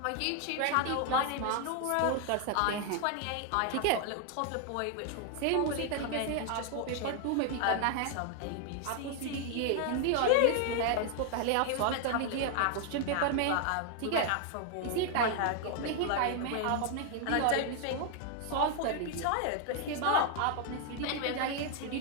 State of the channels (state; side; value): different; both; correlation 0.00